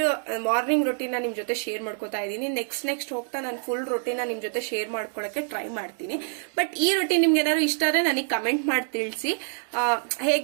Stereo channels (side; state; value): left; silent; 60 dB below the other